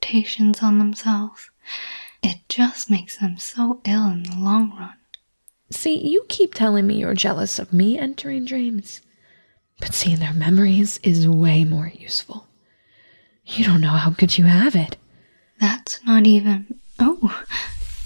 on themselves? It just makes them so ill in the long run. See, you keep telling me you're jealous of me entering dreams, but seeing their memories is way more useful. You don't know how good you have it. That's not even... Oh!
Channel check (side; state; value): both; inverted; correlation -1.00